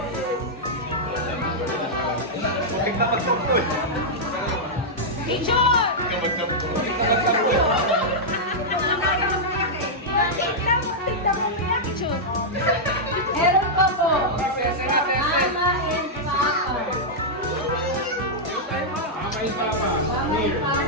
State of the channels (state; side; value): normal; both; correlation -0.07